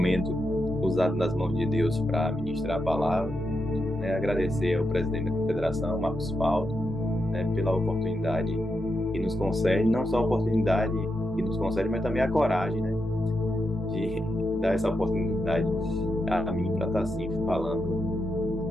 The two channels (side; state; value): both; normal; correlation 0.85